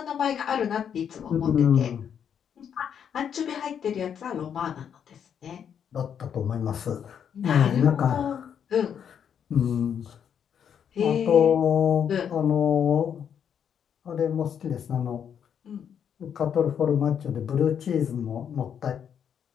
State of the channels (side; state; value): right; quieter; 8.2 dB